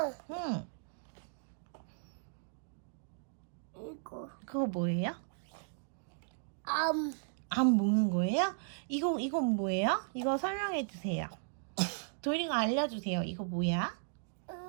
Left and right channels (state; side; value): silent; left; digital silence